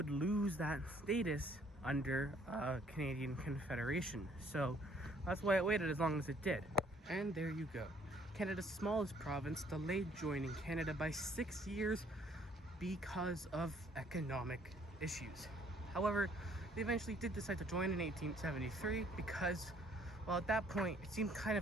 lose that status under Canadian Confederation. So that's why it waited as long as it did. And there you go. Canada's smallest province delayed joining Canada by 6 years because of economic issues. However, they eventually did decide to join in 1873 because, well, at that point, it seemed kind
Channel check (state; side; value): normal; both; correlation 0.62